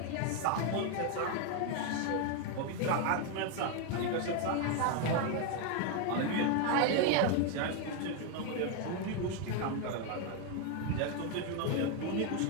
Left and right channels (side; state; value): both; different; correlation 0.01